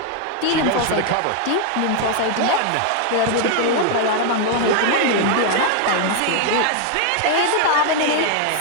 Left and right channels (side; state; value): both; different; correlation 0.00